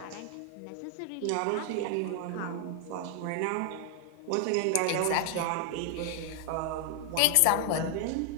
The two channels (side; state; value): both; different; correlation 0.00